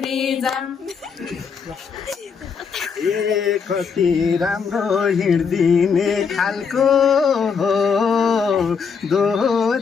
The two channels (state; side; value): quieter; right; 6.0 dB